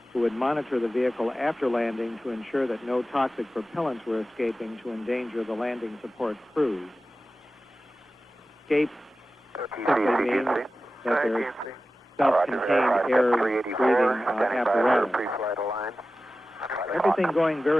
who would monitor the vehicle after landing to ensure that no toxic propellants were escaping to endanger the landing support crews. Escape simply means that there's self-contained air-breathing apparatus. Everything going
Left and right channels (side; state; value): both; normal; correlation 0.94